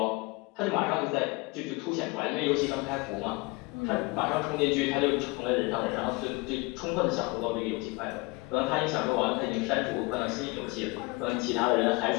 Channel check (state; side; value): quieter; right; 25.7 dB